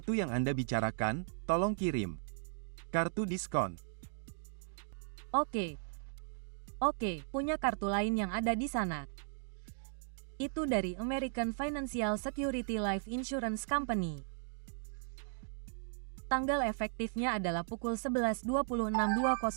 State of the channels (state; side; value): silent; left; digital silence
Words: yang Anda bicarakan, tolong kirim. Kartu diskon. Oke, punya kartu lain yang ada di sana. Itu dari American Financial Security Life Insurance Company. Tanggal efektifnya adalah pukul